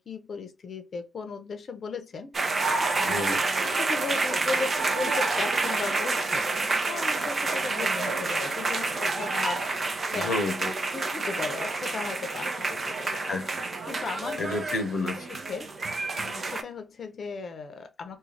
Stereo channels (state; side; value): normal; both; correlation 0.82